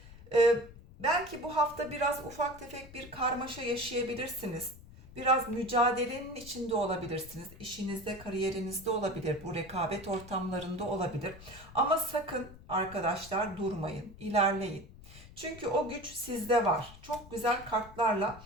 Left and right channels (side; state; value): left; noise; rumble, 18 dB below the sound